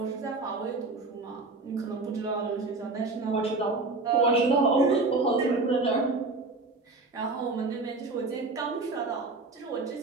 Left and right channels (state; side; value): quieter; left; 3.5 dB